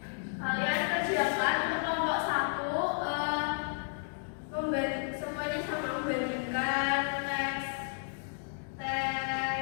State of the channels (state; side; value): silent; right; 56 dB below the other